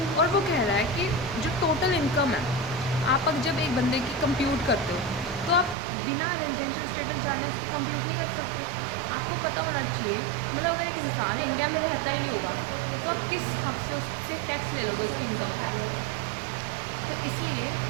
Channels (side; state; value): left; drops out; at 5.8 s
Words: और वो कह रहा है कि जो टोटल इनकम है, आप अगर जब एक बंदे की कंप्यूट करते हो तो आप बिना रेजिडेंशियल स्टेटस जाने उसकी कंप्यूट नहीं कर सकते। आपको पता होना चाहिए, मतलब अगर एक इंसान इंडिया में रहता ही नहीं होगा तो आप किस हक से उससे टैक्स ले लोगे उसकी इनकम पे। तो इसलिए